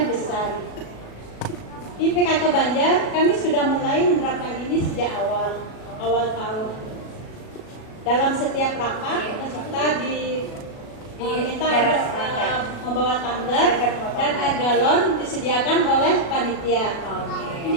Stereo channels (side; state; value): right; late; 37 ms